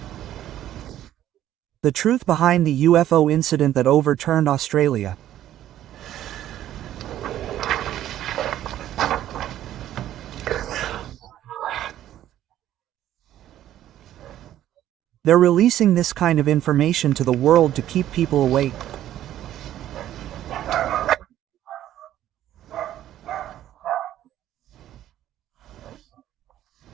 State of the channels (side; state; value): left; quieter; 12.3 dB